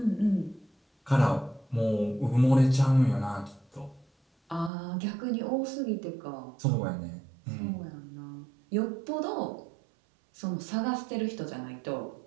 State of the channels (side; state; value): left; drops out; at 4.7 s